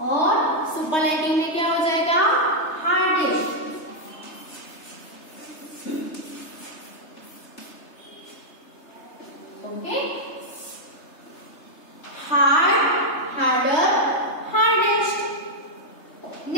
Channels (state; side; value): late; right; 3.3 ms